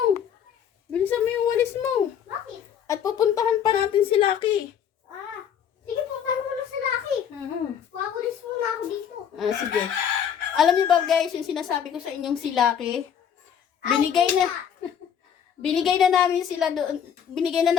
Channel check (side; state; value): right; quieter; 8.4 dB